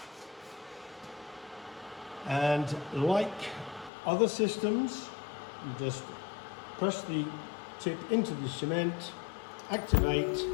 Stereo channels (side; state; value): right; drops out; at 3.9 s